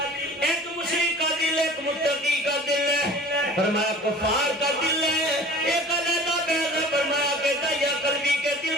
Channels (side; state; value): both; normal; correlation 0.43